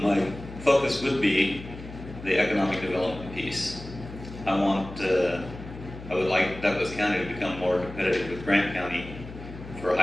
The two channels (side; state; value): left; noise; hum, 13 dB below the sound